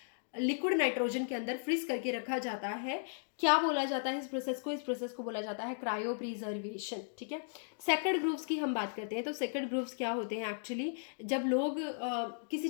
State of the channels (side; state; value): right; silent; digital silence